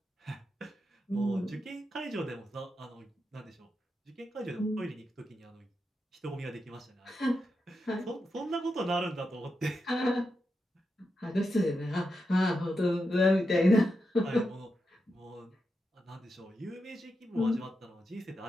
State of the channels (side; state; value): both; normal; correlation 0.87